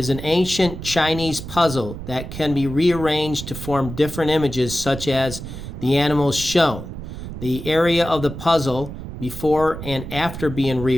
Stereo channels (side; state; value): right; noise; rumble, 9 dB below the sound